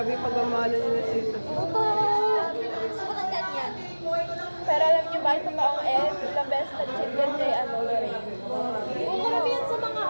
yung pagmamahal nila sa isa. Gusto ko ng ganyan. Pero alam niyo ba, itong taong ilang beses nag-cheat yan kay Lorraine. Oo, karamihan sa mga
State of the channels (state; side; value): inverted; both; correlation -1.00